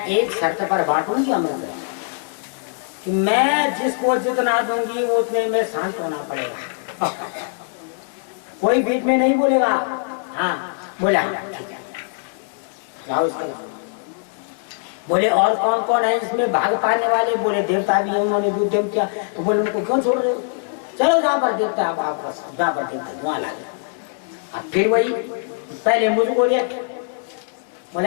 एक शर्त पर बांटूंगी अमृत कि मैं जिसको जितना दूंगी वो उतने में शांत होना पड़ेगा कोई बीच में नहीं बोलेगा हाँ बोला ठीक है बोले और कौन कौन है इसमें भाग पाने वाले बोले देवता भी है उन्होंने भी उद्यम किया तो बोले उनको क्यों छोड़ रहे हो चलो जहाँ पर देवता है वापस जहाँ पर देवता वहां ला गया अब फिर वही पहले मुझको लिया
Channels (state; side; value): silent; right; 64 dB below the other